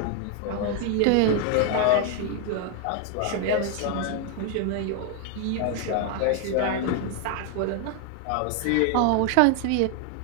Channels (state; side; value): different; both; correlation 0.00